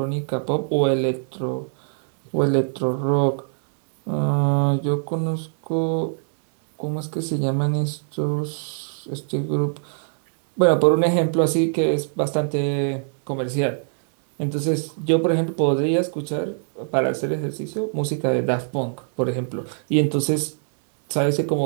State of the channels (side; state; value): left; silent; digital silence